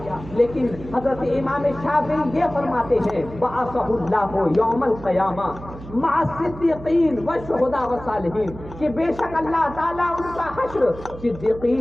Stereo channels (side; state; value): right; noise; hum, 15 dB below the sound